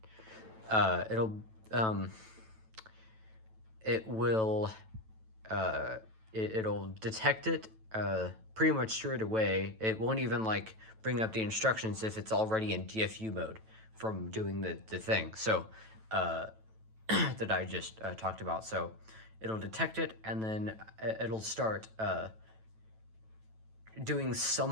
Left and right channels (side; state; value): left; late; 9.1 ms